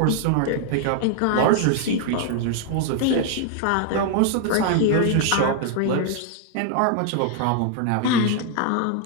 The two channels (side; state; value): both; different; correlation 0.00